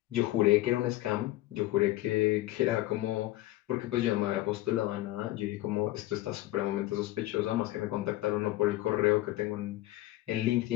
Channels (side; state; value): right; quieter; 16.9 dB